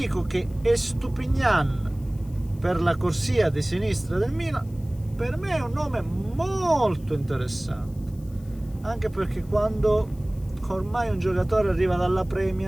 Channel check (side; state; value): left; noise; hiss, 28 dB below the sound